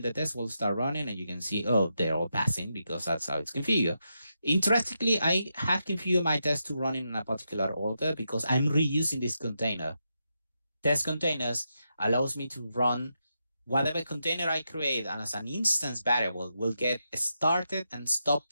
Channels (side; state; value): both; inverted; correlation -0.85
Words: the test will start running, and you can see, they're all passing because that's how it's configured. Interestingly, I have configured my test to run in a particular order because I'm reusing this container. Testcontainers allows me to run whatever container I create, and as an instance variable will get started and